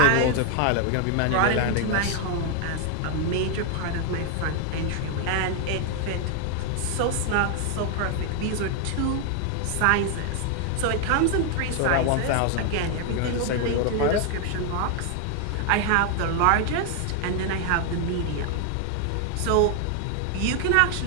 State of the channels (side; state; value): both; different; correlation 0.00